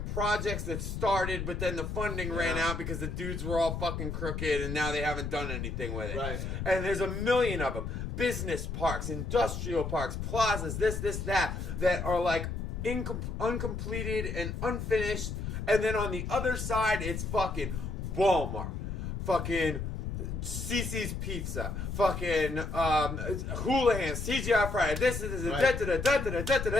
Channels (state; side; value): noise; left; rumble, 4 dB below the sound